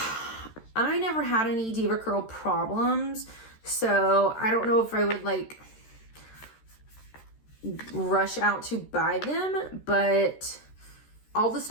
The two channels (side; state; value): right; late; 13 ms